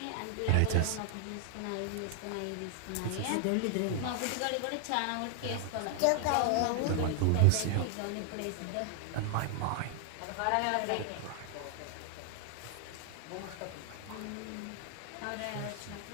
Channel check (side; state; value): both; different; correlation 0.00